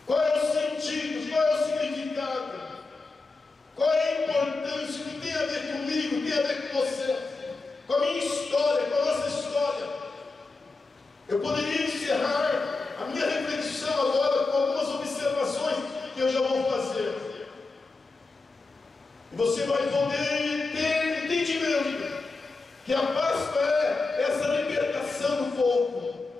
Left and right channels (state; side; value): quieter; right; 3.7 dB